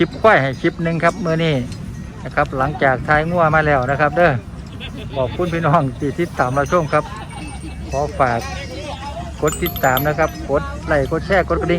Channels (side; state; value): both; identical; correlation 1.00